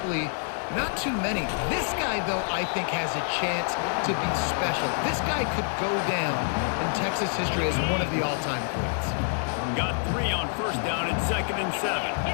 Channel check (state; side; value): silent; right; 57 dB below the other